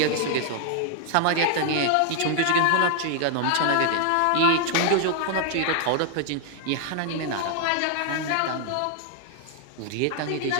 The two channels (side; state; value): both; different; correlation 0.00